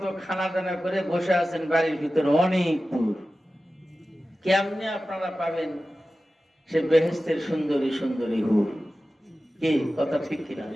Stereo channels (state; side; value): normal; both; correlation 0.95